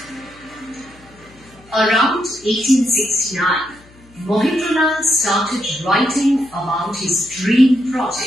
Around 1869, Mahendralal started writing about his dream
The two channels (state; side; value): noise; left; hum, 26 dB below the sound